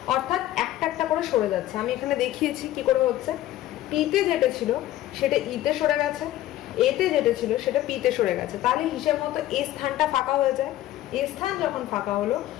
অর্থাৎ একটা একটা করে সরে যাচ্ছে। আমি এখানে দেখিয়েছি কি করে হচ্ছে। পিতে যেটা ছিল সেটা ইতে সরে গেছে, এতে যেটা ছিল সেটা পিতে সরে গেছে। তাহলে হিসেব মতো এ স্থানটা ফাঁকা হয়ে যায়। এ স্থান যখন ফাঁকা হলো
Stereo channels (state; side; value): quieter; right; 14.2 dB